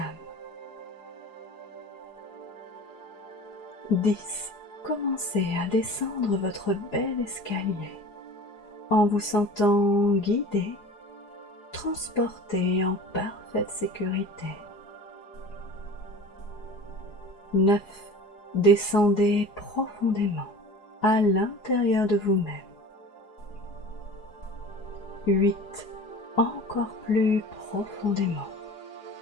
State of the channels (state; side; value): late; right; 4.8 ms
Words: 10. Commencez à descendre votre bel escalier en vous sentant guidé, transporté en parfaite sécurité. 9. Descendez profondément à l'intérieur de vous-même. 8. Encore plus profondément.